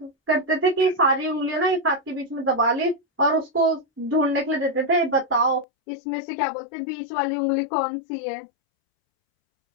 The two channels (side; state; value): right; drops out; at 5.7 s